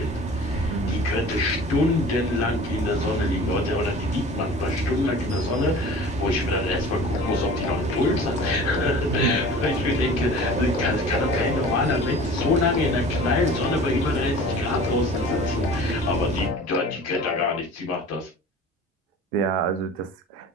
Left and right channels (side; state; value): both; normal; correlation 0.42